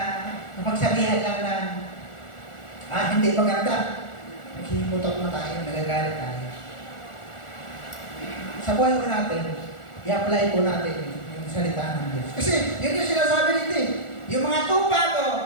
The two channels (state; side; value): late; right; 1.4 ms